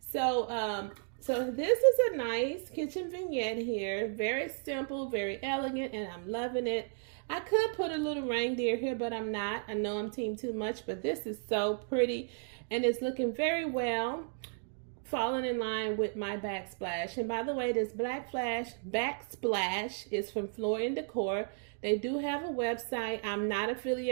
so this is a nice kitchen vignette here. Very simple, very elegant, and I'm loving it. I could put a little reindeer here, but I'm not. I know I'm team too much, but this is so pretty, and it's looking very well, falling in line with my backsplash. And by the way, this backsplash is from Floor & Decor. They do have a website. I'm not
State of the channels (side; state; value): left; silent; 55 dB below the other